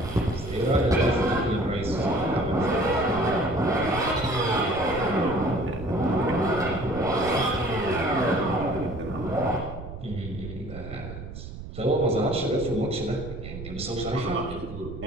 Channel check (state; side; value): noise; right; rumble, 11 dB below the sound